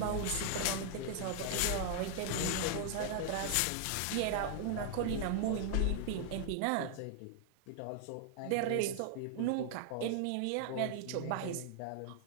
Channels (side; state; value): both; different; correlation 0.00